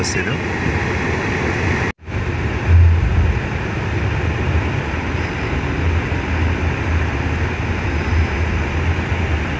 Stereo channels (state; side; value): identical; both; correlation 1.00